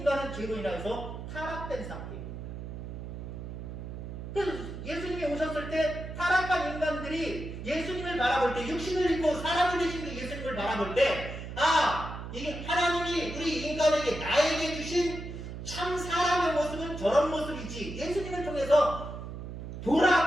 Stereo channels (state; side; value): noise; right; hum, 9 dB below the sound